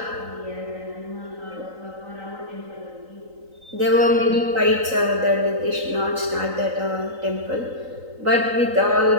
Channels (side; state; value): left; late; 3.9 ms